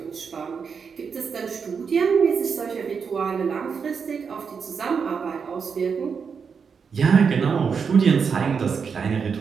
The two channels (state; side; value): quieter; left; 6.0 dB